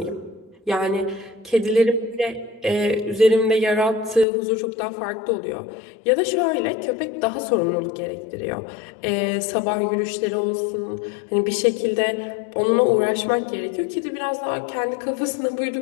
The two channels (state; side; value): drops out; right; at 4.2 s